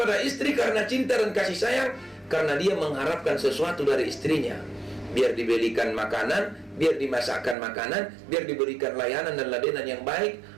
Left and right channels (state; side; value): drops out; left; at 7.6 s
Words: istri karena cinta dan kasih sayang, karena dia mengharapkan sesuatu dari istrinya, biar dibelikan makanan, biar dimasakkan makanan, biar diberikan layanan dan ladenan yang baik,